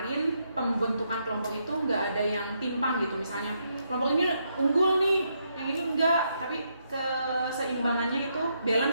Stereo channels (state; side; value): inverted; both; correlation -0.78